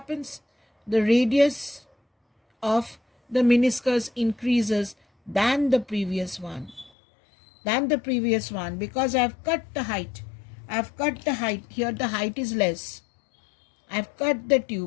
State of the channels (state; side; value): drops out; right; at 6.9 s